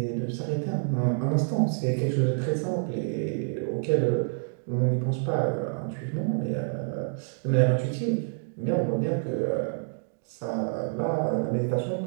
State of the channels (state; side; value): silent; left; digital silence